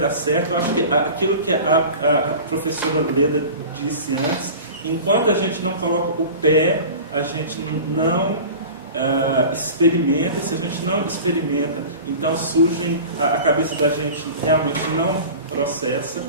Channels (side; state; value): both; inverted; correlation -0.37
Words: certo. Eu acho que aquilo que a professora Leda disse antes, enquanto a gente não coloca o pé, a gente não experimenta. E se a gente não experimenta, então a cabeça da gente realmente não processa.